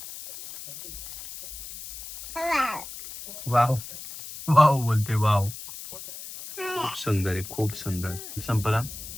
वाव वाव बोलते, वाव. खूप सुंदर आहे, खूप सुंदर. संपला,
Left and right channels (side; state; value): left; noise; hiss, 12 dB below the sound